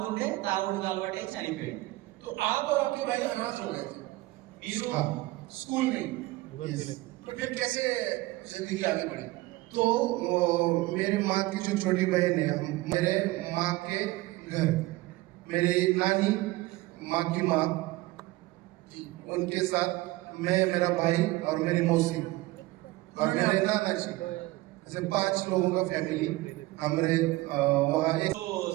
తాగుడు అలవాటై చనిపోయిండు. तो आप और आपके भाई अनाथ हो गए थे మీరు स्कूल में. तो फिर कैसे जिंदगी आगे बढ़ी? तो मेरी माँ की जो छोटी बहन है, मेरे माँ के घर मेरी नानी, माँ की माँ, उनके साथ मैं, मेरा भाई और मेरी मौसी और मेरे नाना जी, ऐसे 5 लोगों का फैमिली हम रहे वहाँ. एक సో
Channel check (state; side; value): quieter; left; 19.3 dB